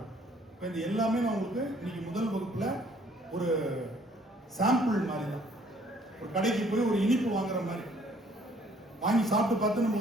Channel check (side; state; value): both; normal; correlation 0.61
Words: இப்ப இது எல்லாமே நான் உங்களுக்கு இன்னைக்கு முதல் வகுப்புல ஒரு சாம்பிள் மாதிரி தான். ஒரு கடைக்கு போய் ஒரு இனிப்பு வாங்குற மாதிரி வாங்கி சாப்பிட்டு பார்த்து நம்ம